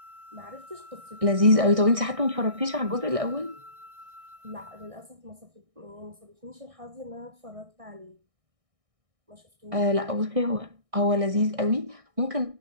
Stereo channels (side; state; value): left; late; 1.6 ms